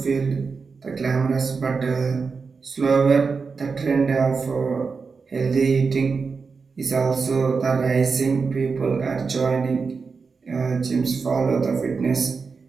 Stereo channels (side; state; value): left; quieter; 4.9 dB